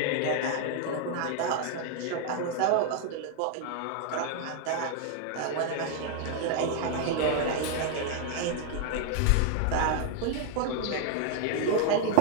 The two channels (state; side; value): different; both; correlation 0.00